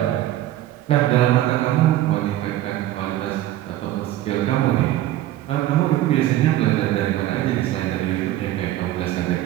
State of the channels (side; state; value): left; quieter; 14.1 dB